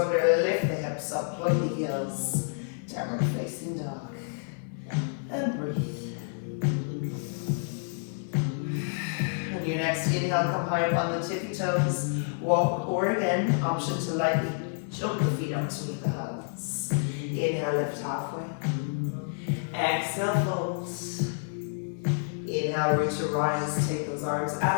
lift the hips up, plug the heels, downward facing dog, and breathe. On your next inhale, come high up on the tippy toes, walk, or again, option to lightly jump the feet up to meet the hands. Inhale, lift halfway. Exhale, fold. Inhale, root to rise, take those arms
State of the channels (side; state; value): right; silent; 57 dB below the other